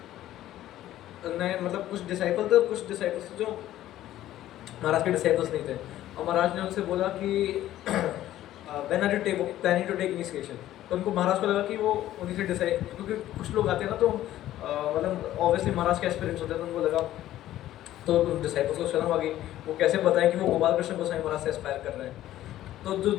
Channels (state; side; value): quieter; right; 13.6 dB